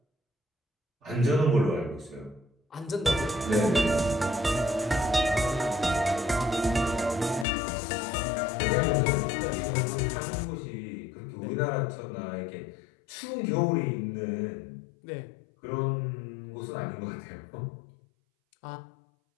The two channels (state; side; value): drops out; right; at 7.5 s